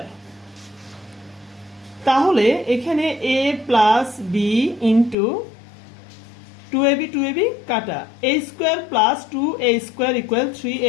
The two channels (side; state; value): right; drops out; at 5.2 s